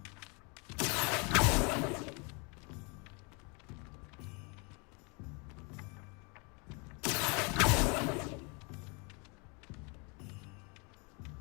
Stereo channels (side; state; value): right; quieter; 31.9 dB